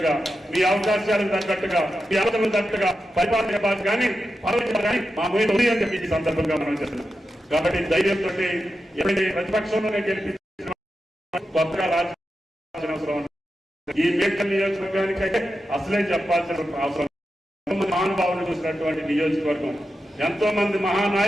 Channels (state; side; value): normal; both; correlation 0.90